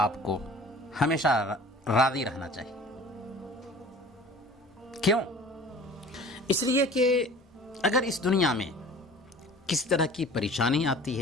آپ کو ہمیشہ راضی رہنا چاہیے. کیوں؟ اس لیے کہ اگر اس دنیا میں کس طرح کی پریشانی آتی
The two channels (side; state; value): both; normal; correlation 0.45